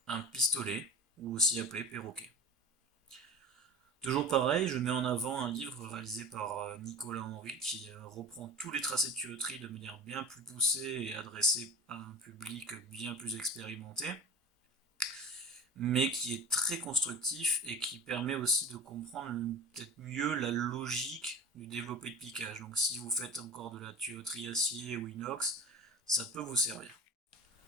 un pistolet, ou aussi appelé perroquet. Toujours pareil, je mets en avant un livre réalisé par Nicolas Henry qui reprend tous les tracés de tuyauterie de manière bien plus poussée et adressée à un public bien plus expérimenté, mais qui est très constructif et qui permet aussi de comprendre peut-être mieux la logique du développé de piquage. Donc si vous faites encore de la tuyauterie acier ou inox, ça peut vous servir.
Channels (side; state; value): both; normal; correlation 0.34